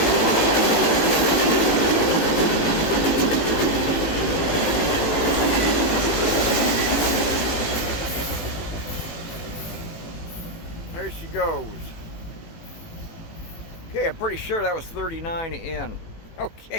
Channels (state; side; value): late; right; 18 ms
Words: There she goes. Okay, I'm pretty sure that was 39N.